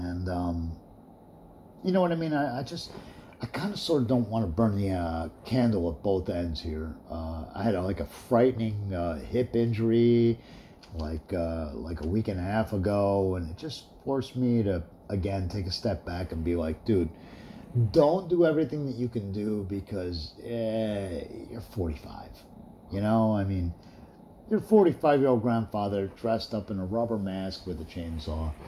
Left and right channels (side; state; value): both; identical; correlation 1.00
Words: you know what I mean? I kind of sort of don't want to burn the candle at both ends here. I had a frightening hip injury like a week and a half ago, and it just forced me to, again, take a step back and be like, dude, don't do everything that you can do because you're 45. You know, I mean, you're a 45-year-old grandfather dressed up in a rubber mask with a chainsaw,